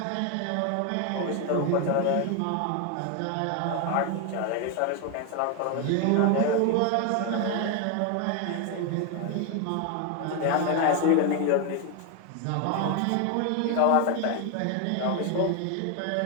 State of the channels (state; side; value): different; both; correlation 0.01